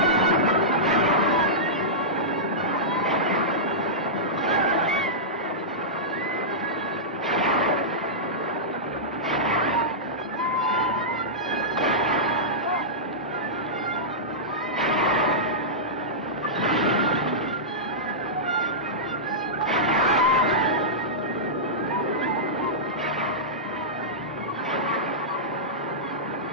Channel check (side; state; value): both; normal; correlation -0.14